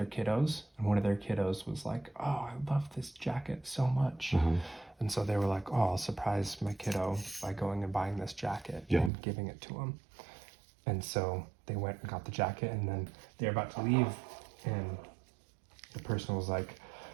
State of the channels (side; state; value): left; drops out; at 9.1 s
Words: kiddos, and one of their kiddos was like, "Oh, I love this jacket so much." And so they were like, "Oh, I'll surprise my kiddo by going and buying this jacket and giving it to him." And so they went and got the jacket, and then they're about to leave, and the person was like,